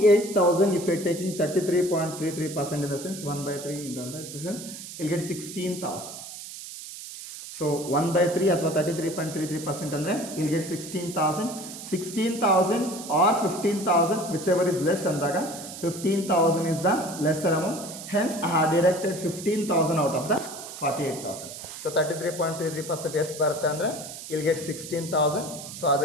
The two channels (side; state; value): right; noise; hiss, 11 dB below the sound